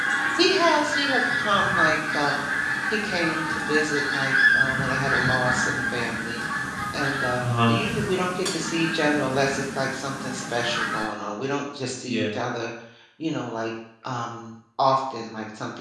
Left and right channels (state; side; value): identical; both; correlation 1.00